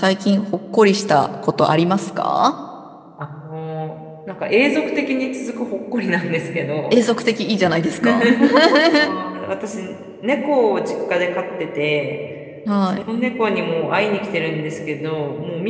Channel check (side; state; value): both; identical; correlation 1.00